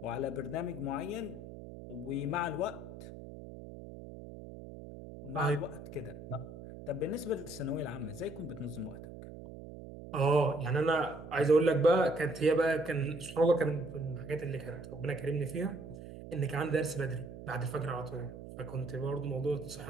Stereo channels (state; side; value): noise; right; hum, 13 dB below the sound